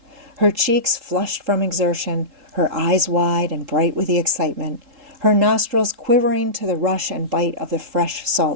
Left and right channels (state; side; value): late; left; 3.7 ms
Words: her cheeks flushed from exertion, her eyes wide and bright with the excitement, her nostrils quivering to the rush and bite of the fresh